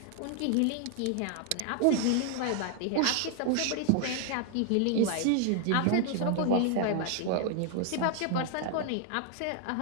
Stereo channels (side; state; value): both; different; correlation 0.00